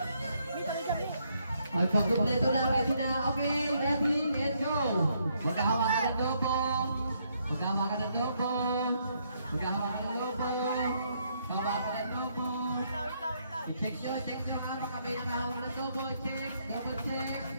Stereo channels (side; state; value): both; inverted; correlation -0.73